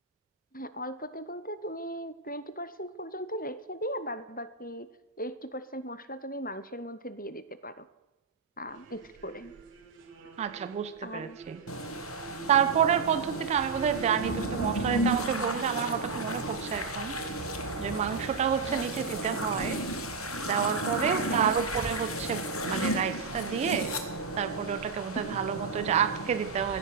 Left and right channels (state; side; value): quieter; left; 5.1 dB